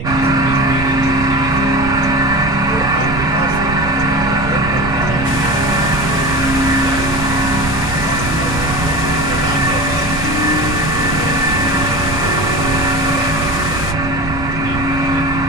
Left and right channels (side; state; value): right; noise; rumble, 7 dB below the sound